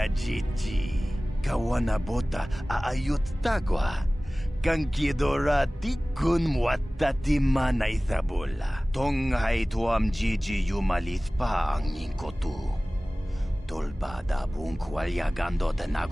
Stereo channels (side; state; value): both; normal; correlation 0.98